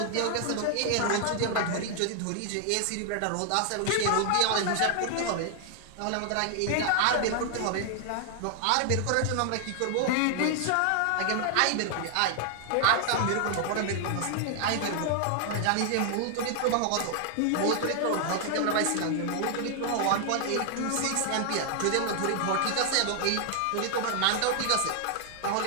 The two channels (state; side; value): different; both; correlation 0.00